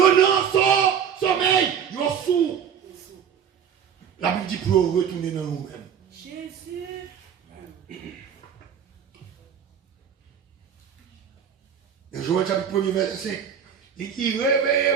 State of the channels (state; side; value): quieter; left; 8.0 dB